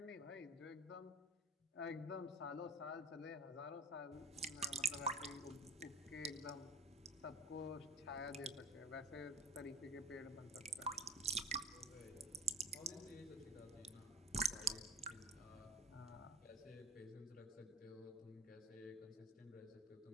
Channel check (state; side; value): normal; both; correlation 0.39